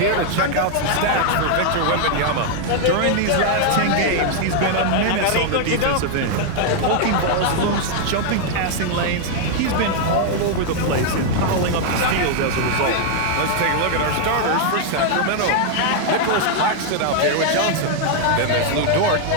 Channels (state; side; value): different; both; correlation 0.00